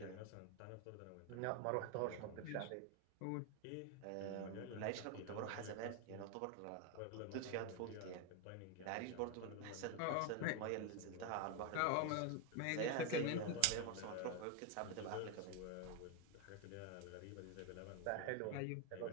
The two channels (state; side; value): different; both; correlation 0.02